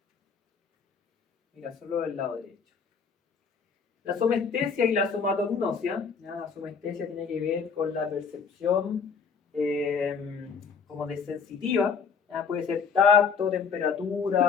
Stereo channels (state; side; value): quieter; right; 5.9 dB